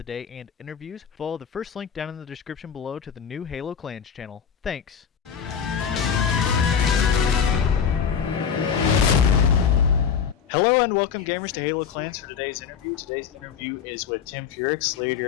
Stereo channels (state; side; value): quieter; right; 7.4 dB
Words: Day and interviews, follow the first link down in the description below to the new Halo Clans channel. Thanks. Hello and welcome, gamers, to Halo Clans for today's interview. Today's interview is with Tim Furix,